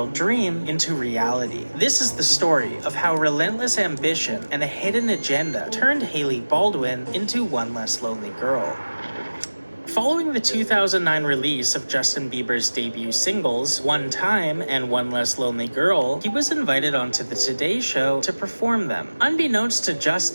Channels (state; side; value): inverted; both; correlation -1.00